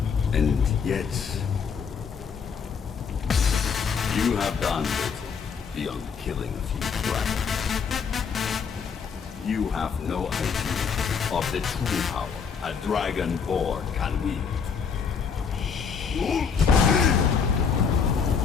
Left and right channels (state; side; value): quieter; right; 6.3 dB